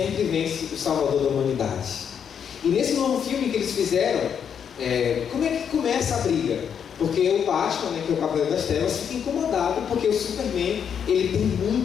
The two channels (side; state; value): right; quieter; 7.8 dB